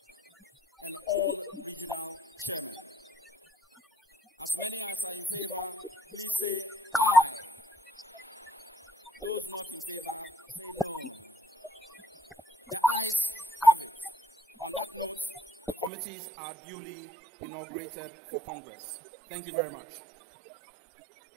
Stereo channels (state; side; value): drops out; left; at 15.9 s